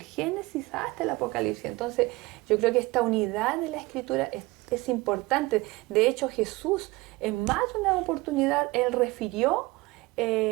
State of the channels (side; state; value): left; quieter; 21.9 dB